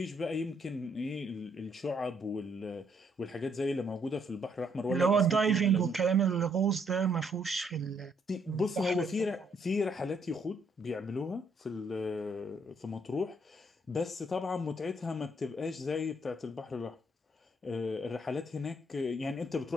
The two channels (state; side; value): normal; both; correlation 0.70